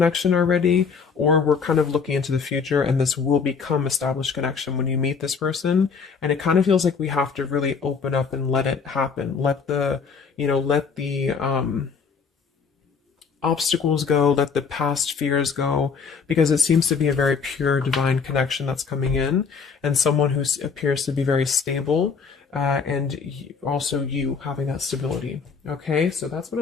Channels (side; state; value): right; quieter; 5.6 dB